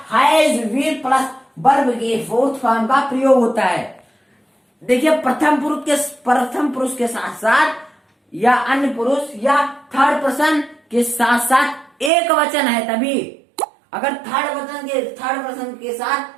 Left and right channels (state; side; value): drops out; left; at 12.1 s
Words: हैज बीन प्लस वर्ब के 4th फॉर्म का प्रयोग होता है। देखिए प्रथम पुरुष के साथ साथ या अन्य पुरुष या थर्ड पर्सन के साथ साथ एक वचन है, तभी अगर थर्ड पर्सन के साथ